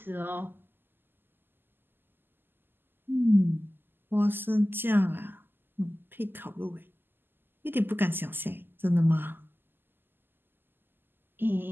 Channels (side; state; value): left; late; 0.096 ms